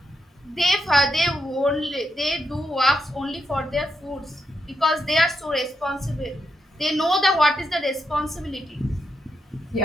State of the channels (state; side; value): normal; both; correlation 0.83